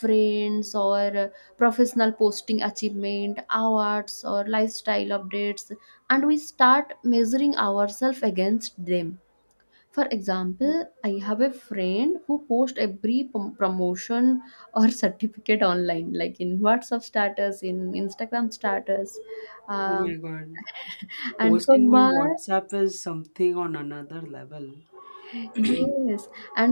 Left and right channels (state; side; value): inverted; both; correlation -1.00